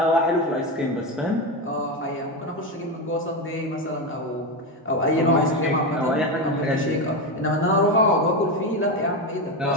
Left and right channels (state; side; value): normal; both; correlation 0.14